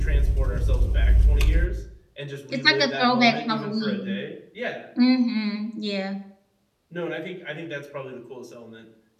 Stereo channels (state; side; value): identical; both; correlation 1.00